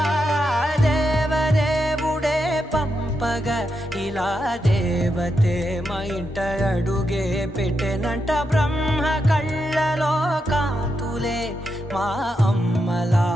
దేవదేవుడే పంపగా ఇలా దేవతే మా ఇంట అడుగే పెట్టెనంట బ్రహ్మ కళ్ళలో కాంతులే మా అమ్మలా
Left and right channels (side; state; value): both; normal; correlation 0.85